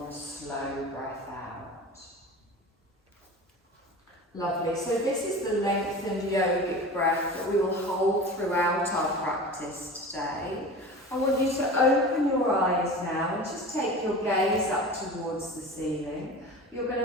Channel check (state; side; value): normal; both; correlation 0.34